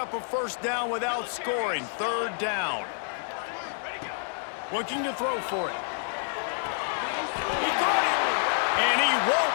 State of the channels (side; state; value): right; silent; digital silence